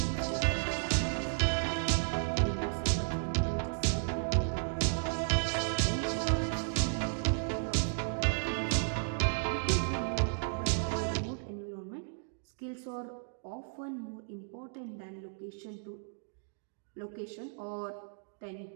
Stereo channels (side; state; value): left; silent; digital silence